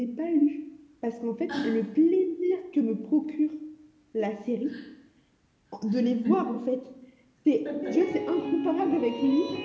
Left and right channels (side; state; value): both; identical; correlation 1.00